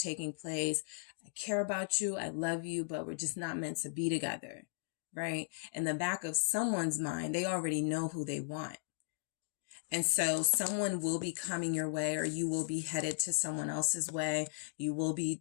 place. I care about you. I love you, but we're just not meant to be together. Right? In the back of someone's mind, they already know who they want. And so someone will be coming your way, or you will be headed to someone else's way. You will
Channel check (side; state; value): right; silent; digital silence